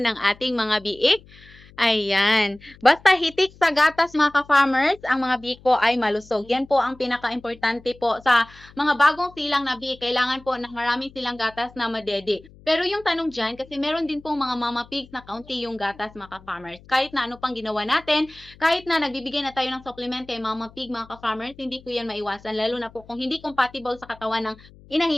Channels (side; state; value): left; noise; hum, 24 dB below the sound